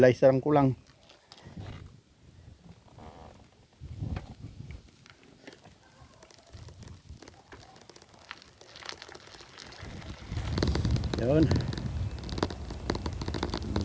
ang kulang. Yun.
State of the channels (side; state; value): both; identical; correlation 1.00